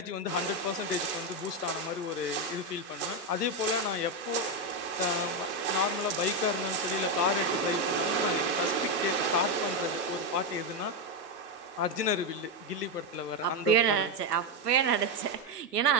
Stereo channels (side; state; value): both; normal; correlation 0.07